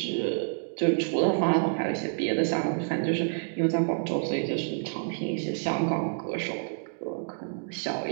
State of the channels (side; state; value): left; silent; digital silence